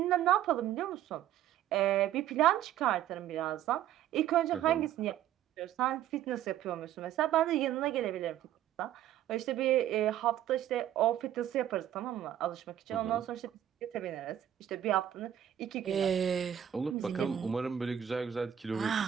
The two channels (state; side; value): quieter; left; 11.1 dB